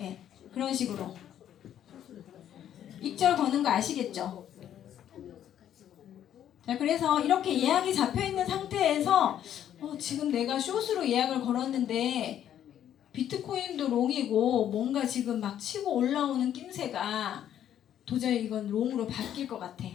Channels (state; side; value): quieter; right; 10.5 dB